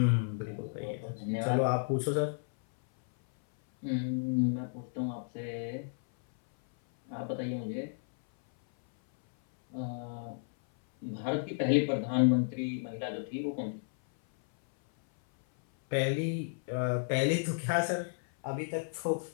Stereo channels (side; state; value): right; silent; 56 dB below the other